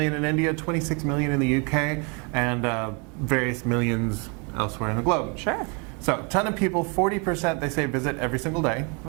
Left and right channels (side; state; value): left; quieter; 33.8 dB